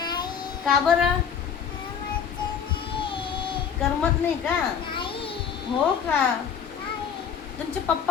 का बरं? करमत नाही का? हो का? तुमचे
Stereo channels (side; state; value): right; quieter; 7.4 dB